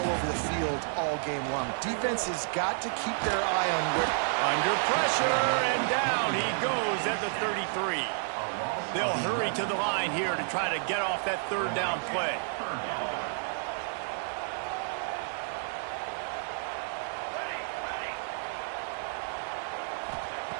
over the field all game long. Defense has got to keep their eye on where... Under pressure, and down he goes at the 33. They'll hurry to the line here to try to get off that third down play.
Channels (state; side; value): silent; left; digital silence